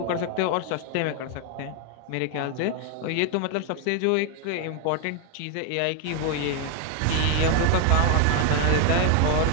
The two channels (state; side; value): different; both; correlation 0.01